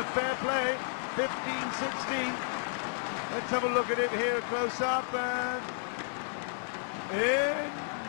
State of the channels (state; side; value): silent; right; 56 dB below the other